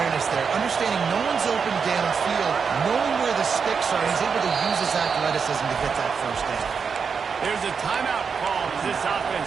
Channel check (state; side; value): quieter; left; 5.9 dB